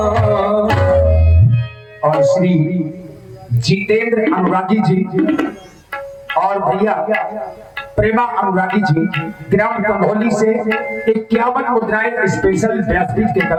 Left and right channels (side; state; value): both; identical; correlation 1.00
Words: और श्री जितेंद्र अनुरागी जी और भैया प्रेमा अनुरागी जी ग्राम कंभोली से 51 मुद्राएं स्पेशल व्यासपीठ के